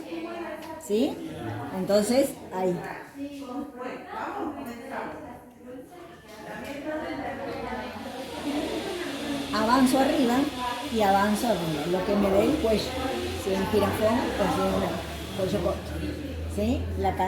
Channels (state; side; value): identical; both; correlation 1.00